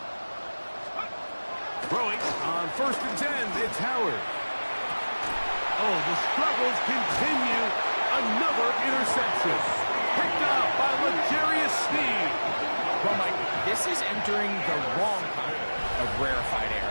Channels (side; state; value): both; inverted; correlation -1.00